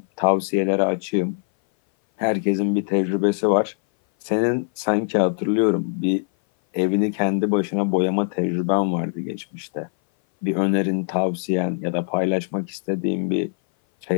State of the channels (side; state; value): right; silent; 59 dB below the other